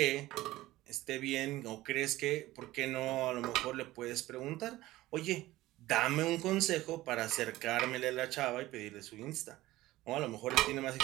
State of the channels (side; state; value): left; quieter; 17.1 dB